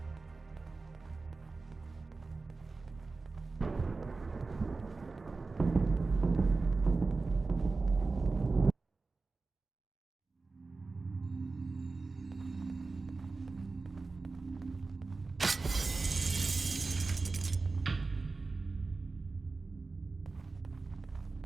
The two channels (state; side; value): quieter; left; 3.8 dB